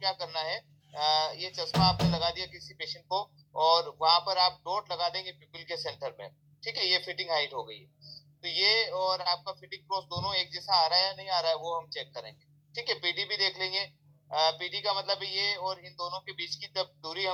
करना है, ये चश्मा आपने लगा दिया किसी पेशेंट को और वहां पर आप डॉट लगा देंगे पिपल के सेंटर में, ठीक है, ये फिटिंग हाइट हो गई। तो ये और आपका फिटिंग क्रॉस दोनों एक जैसा आ रहा है या नहीं आ रहा है वो हम चेक करेंगे, ठीक है। पीडी भी देख लेंगे, पीडी का मतलब ये और इन दोनों के बीच की तब दूरी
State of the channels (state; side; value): identical; both; correlation 1.00